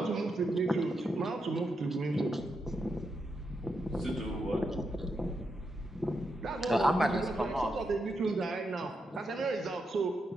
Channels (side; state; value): both; normal; correlation 0.84